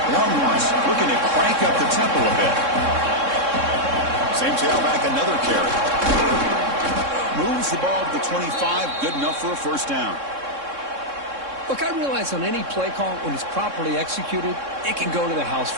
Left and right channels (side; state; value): left; late; 3.6 ms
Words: Longhorns looking to crank up the tempo a bit. Same tailback, another carry. Moves the ball to the 25, good enough for a first down. Look, I realize on any play call, when it's properly executed, it can go to the house